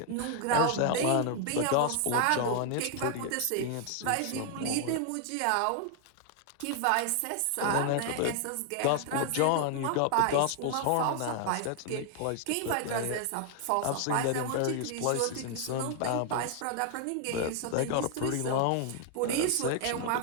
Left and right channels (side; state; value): both; different; correlation 0.00